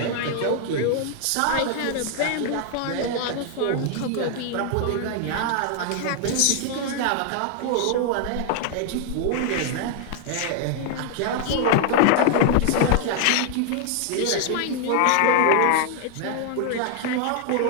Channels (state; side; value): different; both; correlation 0.00